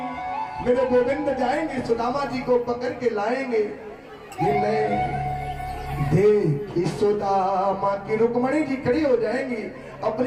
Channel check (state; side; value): identical; both; correlation 1.00